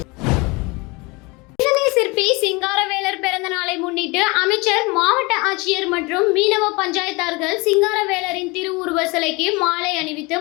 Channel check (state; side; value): quieter; right; 25.9 dB